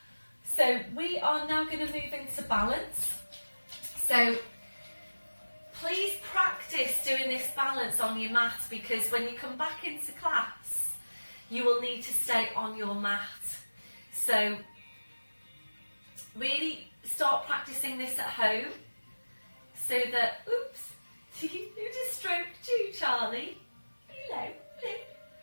So we are now going to move into balance. So please practice doing this balance on your mat, because when you come back into class, you will need to stay on your mat. So really start practicing this at home, so that, oops, who just stroked you, Charlie? Hello.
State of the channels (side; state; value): both; inverted; correlation -1.00